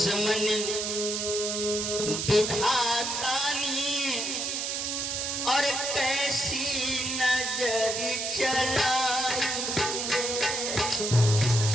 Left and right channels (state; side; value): noise; right; hiss, 1 dB below the sound